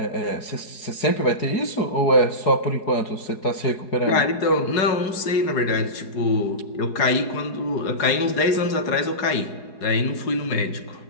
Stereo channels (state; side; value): late; right; 4.8 ms